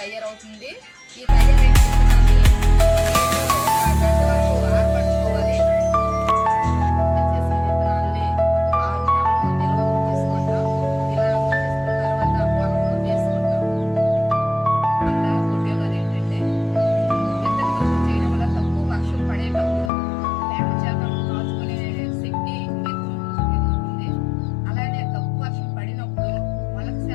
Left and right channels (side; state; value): right; drops out; at 19.9 s